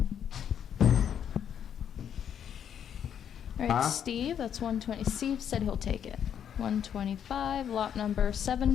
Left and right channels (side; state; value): right; quieter; 8.8 dB